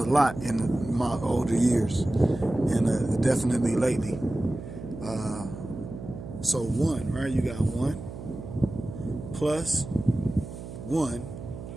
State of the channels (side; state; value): right; noise; hum, 11 dB below the sound